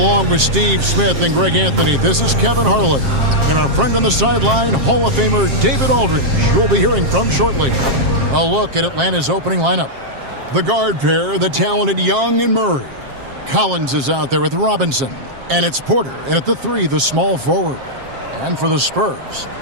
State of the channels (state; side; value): late; left; 7.5 ms